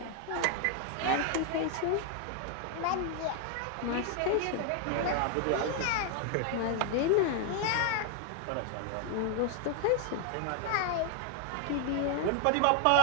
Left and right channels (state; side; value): different; both; correlation 0.00